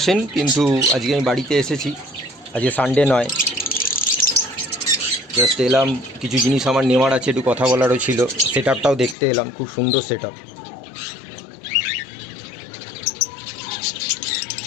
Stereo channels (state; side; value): drops out; right; at 9.2 s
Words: কিন্তু আজকে আমি বাড়িতে এসেছি। আজকে সানডে নয়, জাস্ট এলাম। কিছু জিনিস আমার নেওয়ার আছে, একটু কথা বলারও ছিল। সেটআপটাও দেখতে এলাম, খুব সুন্দর setup.